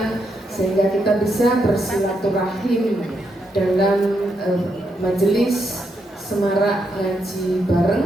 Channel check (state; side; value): normal; both; correlation 0.80